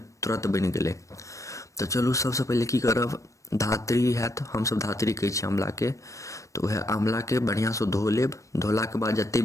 तुरंत बनि गेलै। तो चलू सबसे पहले की करब, धातरी हैत, हम सब धातरी कहै छी आंवला के। तो वह आंवला के बढ़िया से धो लेब। धोला के बाद जते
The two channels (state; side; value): late; right; 0.15 ms